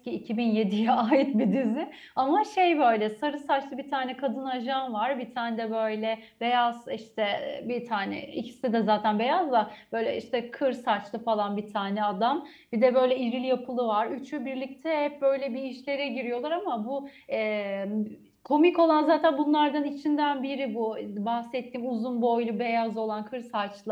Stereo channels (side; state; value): both; identical; correlation 1.00